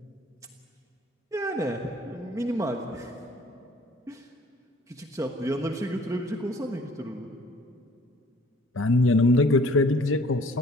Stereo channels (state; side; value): normal; both; correlation 0.55